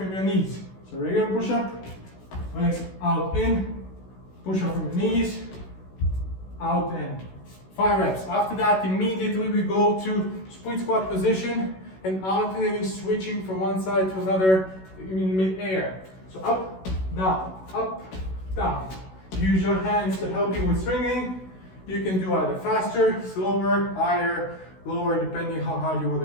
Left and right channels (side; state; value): right; late; 16 ms